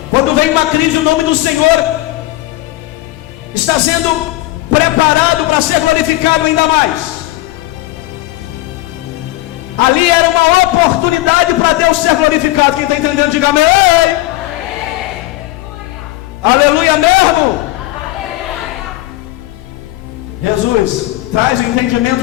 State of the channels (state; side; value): quieter; right; 17.8 dB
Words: Quando vem uma crise, o nome do Senhor está sendo preparado para ser glorificado ainda mais. Ali era uma oportunidade para Deus ser glorificado. Quem está entendendo, diga amém. Aleluia mesmo. Jesus, traz um